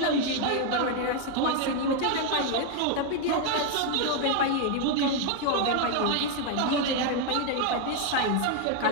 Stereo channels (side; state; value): both; different; correlation 0.01